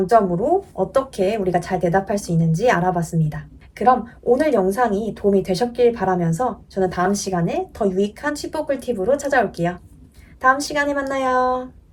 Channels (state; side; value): identical; both; correlation 1.00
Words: 어떻게 우리가 잘 대답할 수 있는지 알아봤습니다. 그럼 오늘 영상이 도움이 되셨길 바라면서 저는 다음 시간에 더 유익한 칩보 꿀팁으로 찾아올게요. 다음 시간에 만나요.